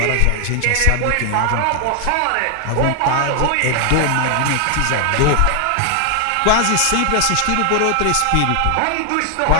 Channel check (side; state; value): both; different; correlation 0.00